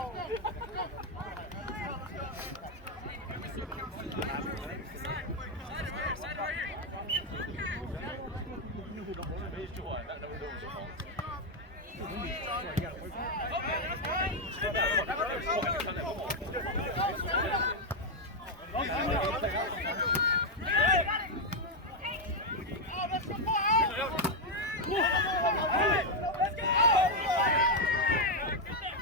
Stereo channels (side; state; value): both; normal; correlation 0.02